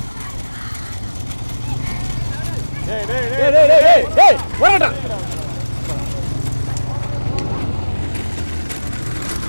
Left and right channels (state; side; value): inverted; both; correlation -1.00